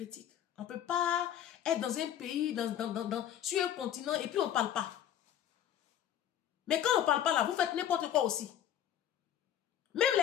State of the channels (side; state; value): right; quieter; 10.5 dB